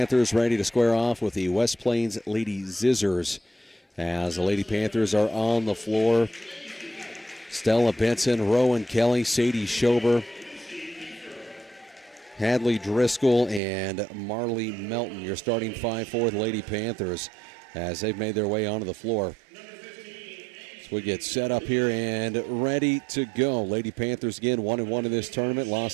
ready to square off with the West Plains Lady Zizzers. As the Lady Panthers are on the floor, Stella Benson, Rowan Kelly, Sadie Schober, Hadley Driscoll, and Marley Melton. Your starting five for the Lady Panthers as they've made their way onto the floor. So we get set up here and ready to go. Lady Panthers again 1-1 in this tournament.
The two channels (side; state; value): left; drops out; at 13.6 s